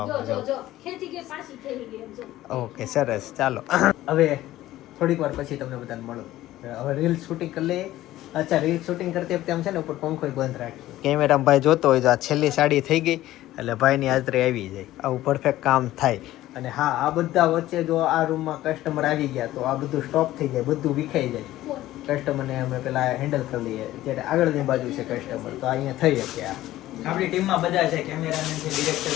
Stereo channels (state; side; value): quieter; right; 15.1 dB